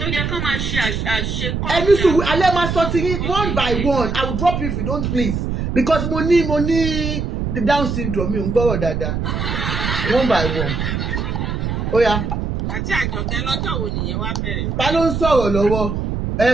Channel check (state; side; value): noise; right; rumble, 2 dB below the sound